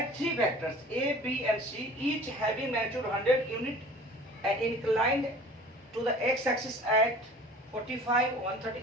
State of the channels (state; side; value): normal; both; correlation 0.45